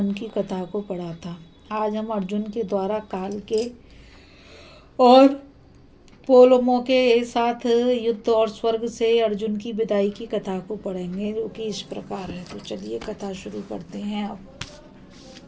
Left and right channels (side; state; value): both; identical; correlation 1.00